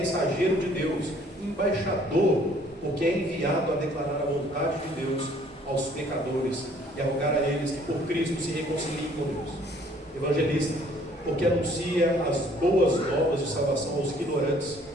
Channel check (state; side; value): normal; both; correlation 0.59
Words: de Deus, embaixador, porque é enviado a declarar a vontade de Deus aos pecadores e a rogar a eles que por Cristo se reconciliem com Deus. Evangelista, porque anuncia as boas novas de salvação aos ignorantes